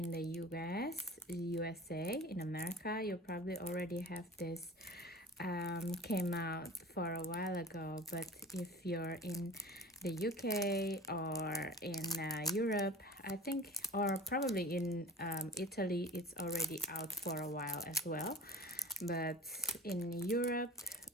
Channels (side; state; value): both; normal; correlation 0.39